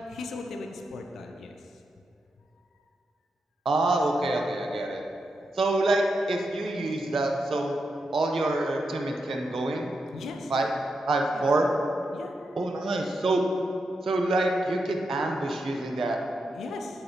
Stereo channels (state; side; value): normal; both; correlation 0.85